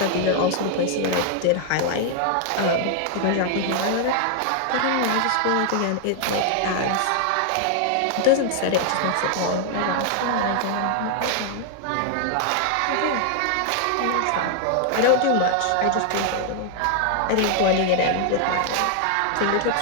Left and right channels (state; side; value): different; both; correlation 0.00